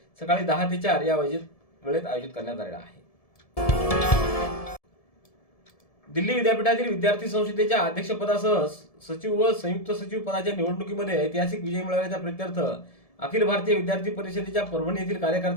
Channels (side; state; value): right; late; 1.7 ms